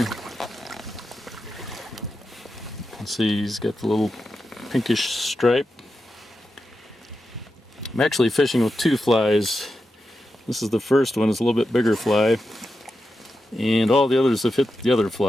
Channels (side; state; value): both; normal; correlation 0.89